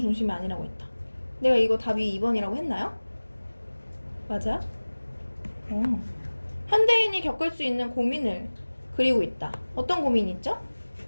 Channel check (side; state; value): both; inverted; correlation -1.00